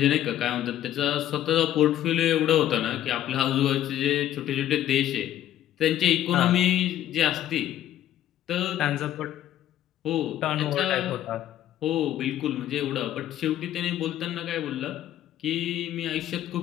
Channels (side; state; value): right; quieter; 12.1 dB